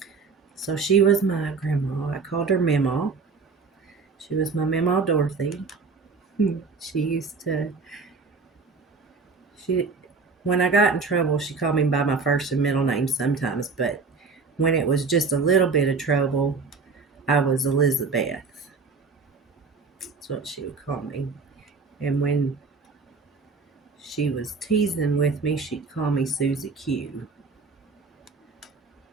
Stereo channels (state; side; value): quieter; left; 4.6 dB